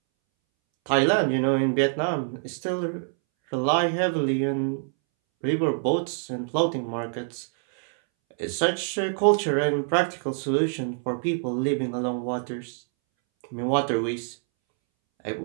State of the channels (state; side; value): silent; left; 61 dB below the other